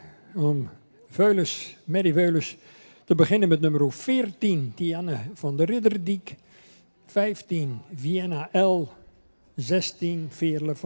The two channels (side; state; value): both; inverted; correlation -1.00